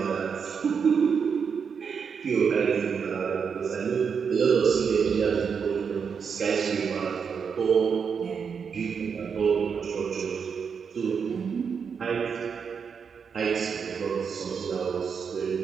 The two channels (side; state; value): left; quieter; 6.3 dB